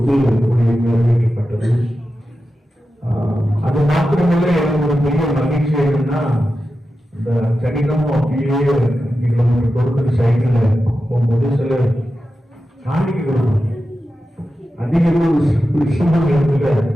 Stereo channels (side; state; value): both; normal; correlation 0.91